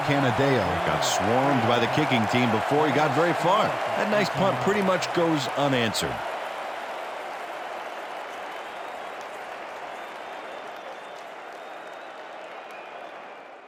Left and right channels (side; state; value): both; identical; correlation 1.00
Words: Canadeo got swarmed by the kicking team before he got very far. That nice punt pretty much goes unanswered.